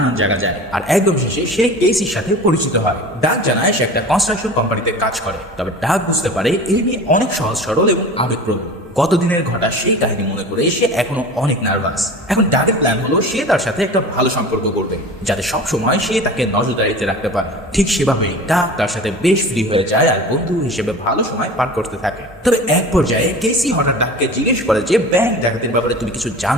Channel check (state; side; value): normal; both; correlation 0.37